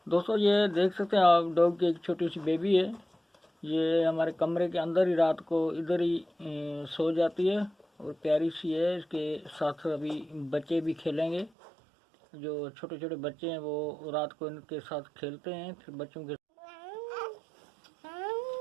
दोस्तों ये देख सकते हैं आप, डॉग की एक छोटी सी बेबी है। ये हमारे कमरे के अंदर ही रात को इधर ही सो जाती है और प्यारी सी है। इसके साथ अभी बच्चे भी खेलेंगे। जो छोटे छोटे बच्चे हैं वो रात को इनके साथ खेलते हैं। फिर बच्चों के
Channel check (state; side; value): drops out; left; at 11.5 s